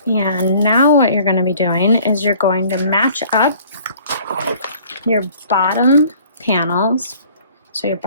And now what you're going to be doing is you're going to match up your bottom panels. So your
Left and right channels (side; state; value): both; inverted; correlation -0.53